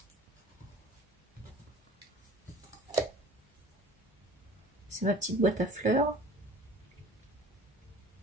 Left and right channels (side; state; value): both; normal; correlation 0.46